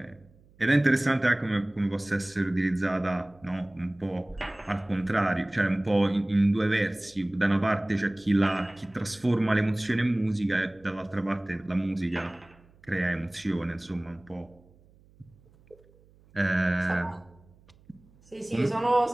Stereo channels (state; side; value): noise; right; hum, 29 dB below the sound